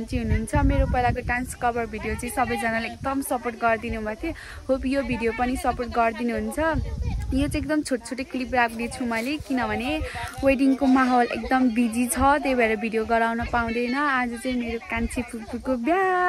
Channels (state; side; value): identical; both; correlation 1.00